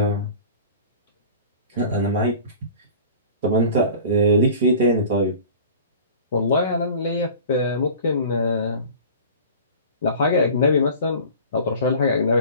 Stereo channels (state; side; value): inverted; both; correlation -0.41